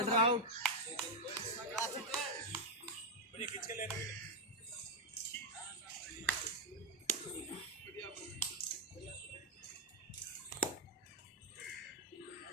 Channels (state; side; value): normal; both; correlation 0.02